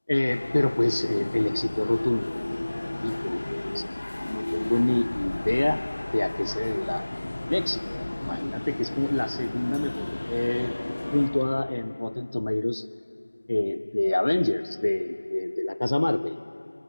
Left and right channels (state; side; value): inverted; both; correlation -1.00